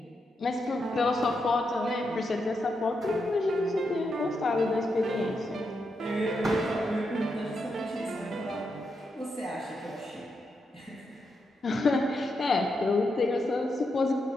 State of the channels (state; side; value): normal; both; correlation 0.84